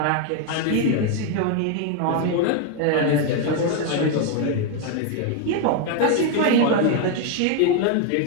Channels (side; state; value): both; different; correlation 0.01